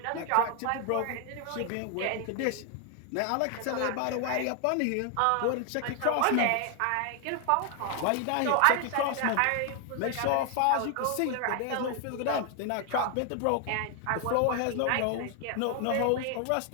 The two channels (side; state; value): both; different; correlation 0.00